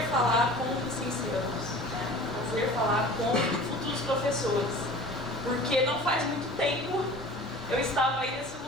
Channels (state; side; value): normal; both; correlation 0.41